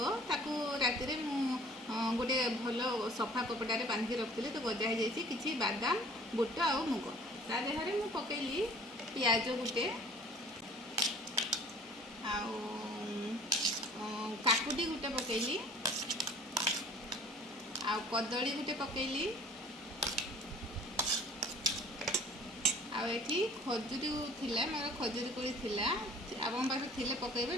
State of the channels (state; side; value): normal; both; correlation 0.51